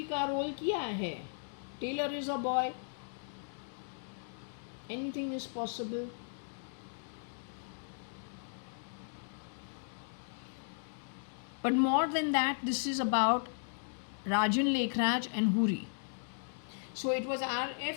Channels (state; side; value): silent; right; digital silence